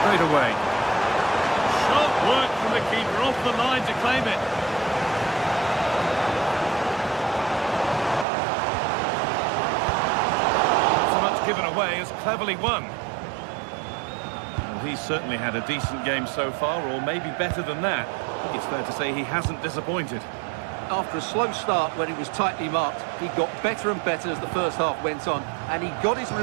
straight away. Sharp work from the keeper off the line to claim it. Not so much given away as cleverly won. Well, he's certainly had a decent game so far, or maybe better than that. I think it's fair to say he hasn't disappointed. After a slow start when he was tightly marked, he got better and better as the first half went on, and he got his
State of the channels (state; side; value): drops out; left; at 8.2 s